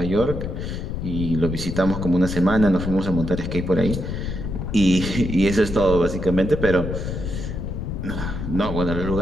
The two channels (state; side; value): noise; left; rumble, 4 dB below the sound